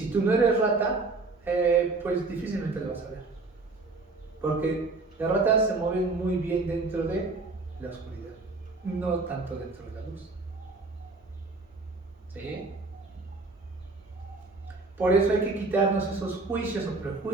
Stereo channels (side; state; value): left; quieter; 3.6 dB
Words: tú no eres rata, pues difícilmente lo vas a ver. Porque las ratas se mueven muy bien dentro de la oscuridad, no tanto dentro de la luz. ¿Sí? Por eso hay que quitarnos esos juicios o